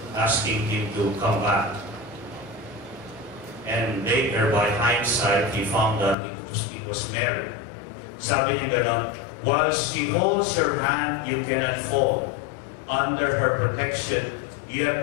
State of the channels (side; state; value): right; drops out; at 6.2 s